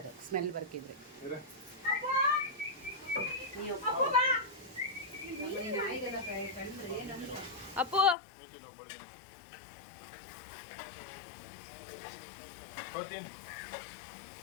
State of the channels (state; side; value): drops out; right; at 8.2 s